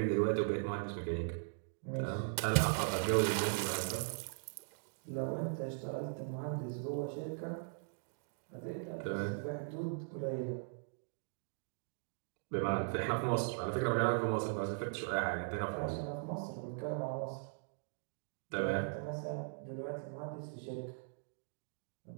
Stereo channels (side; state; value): left; silent; digital silence